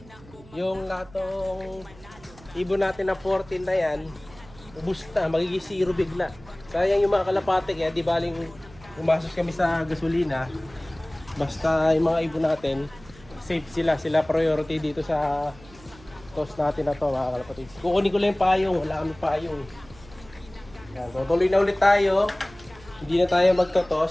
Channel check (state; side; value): noise; right; hum, 22 dB below the sound